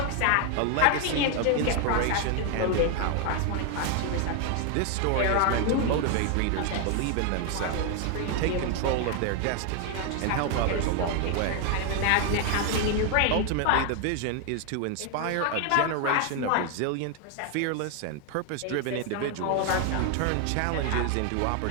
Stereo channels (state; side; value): different; both; correlation 0.01